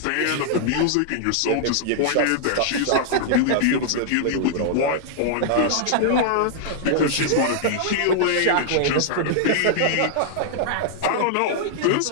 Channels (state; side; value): different; both; correlation -0.01